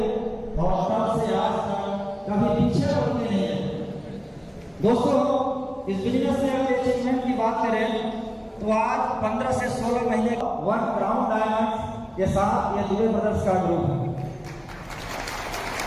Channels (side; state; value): both; identical; correlation 1.00